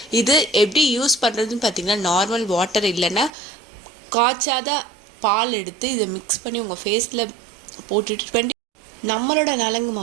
இது எப்படி யூஸ் பண்ணுறதுன்னு பார்த்தீங்கன்னா, நார்மல் வாட்டர் இல்லைன்னா காய்ச்சாத பால் எடுத்து இதை மிக்ஸ் பண்ணி உங்கள் ஃபேஸில் போட்டுட்டு நம்மளோட நலங்கு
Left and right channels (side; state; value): left; drops out; at 3.3 s